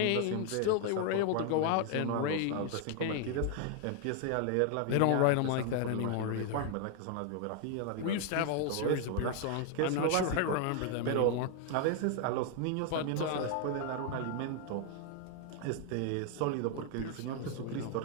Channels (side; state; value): both; different; correlation 0.00